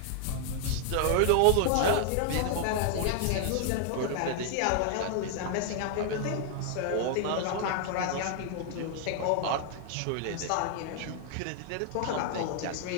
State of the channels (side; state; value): both; different; correlation 0.00